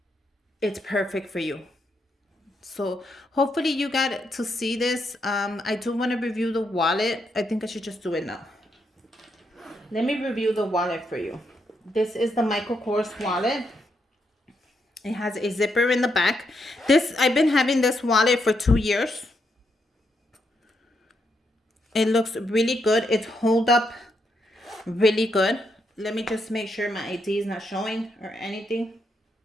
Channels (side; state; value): both; normal; correlation 0.79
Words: It's perfect for you. So hopefully you got to see this. I do want to review the wallet. I think I should just do it now. Let me review the wallet for you. This is the Michael Kors wallet. It has a zipper in the back. I've been having this wallet for 2 years. It looks really good. It's hold up really good. Let me just make sure my ID is not showing or anything.